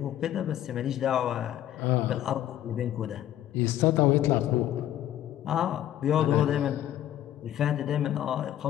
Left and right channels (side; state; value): right; quieter; 12.1 dB